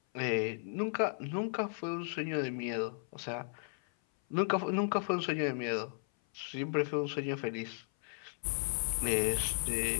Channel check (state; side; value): silent; right; 55 dB below the other